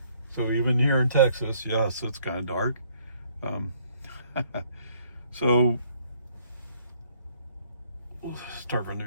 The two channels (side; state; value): both; inverted; correlation -0.65